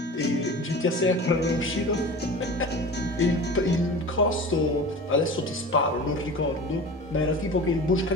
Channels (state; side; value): normal; both; correlation 0.35